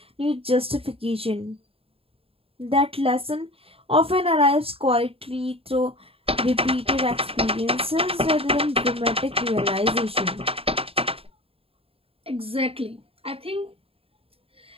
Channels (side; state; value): left; late; 0.27 ms